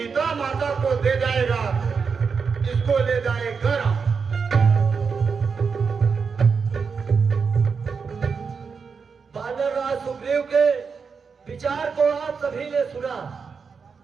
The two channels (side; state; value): left; quieter; 5.5 dB